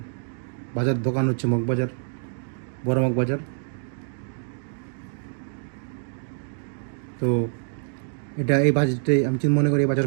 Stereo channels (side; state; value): left; silent; digital silence